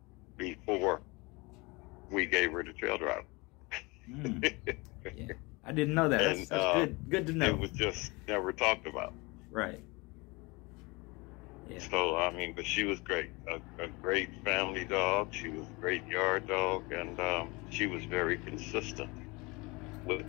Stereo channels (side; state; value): right; quieter; 25.8 dB